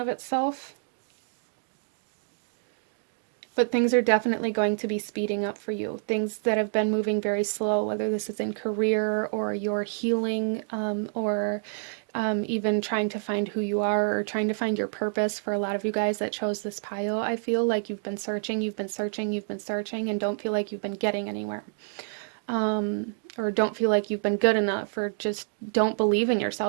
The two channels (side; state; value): left; silent; digital silence